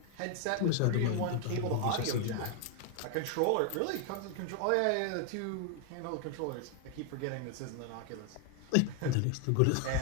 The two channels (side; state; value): both; different; correlation 0.01